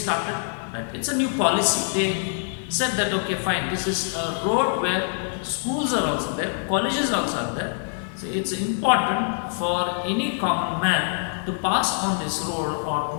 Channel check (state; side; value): silent; right; digital silence